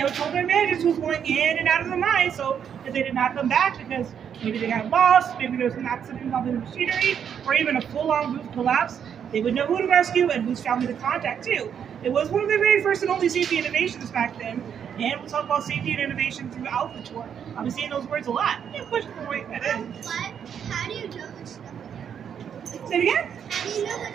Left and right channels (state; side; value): quieter; left; 8.1 dB